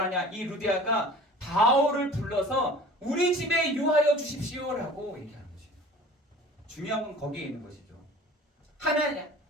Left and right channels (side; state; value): both; normal; correlation 0.44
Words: 하냐? 이 루디아가 바울을 불러서 우리 집에 유하여 주십시오라고 얘기하는 것이에요. 중요한 건 거기에 있는 것이죠. 하나님,